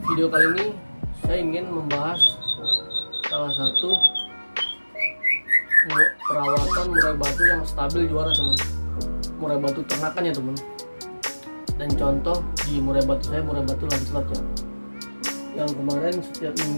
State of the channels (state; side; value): inverted; both; correlation -1.00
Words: video kali ini saya ingin membahas salah satu perawatan murai batu yang stabil juara teman. Murai batu ternakan ya teman. Dan contoh di murai batu saya, murai batu Lancelot ya, yang kemarin setiap